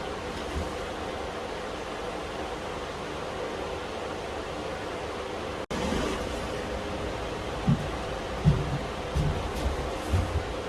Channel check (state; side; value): identical; both; correlation 1.00